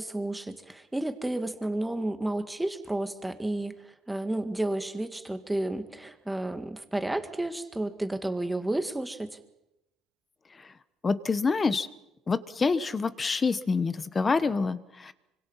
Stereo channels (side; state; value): both; normal; correlation 0.93